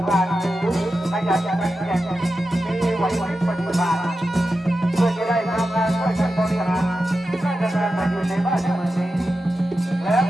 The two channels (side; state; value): both; normal; correlation 0.91